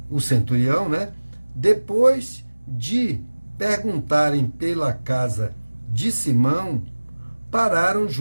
o centurião, né, depois de perguntarem pela casa de Simão, pararam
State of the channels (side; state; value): both; inverted; correlation -1.00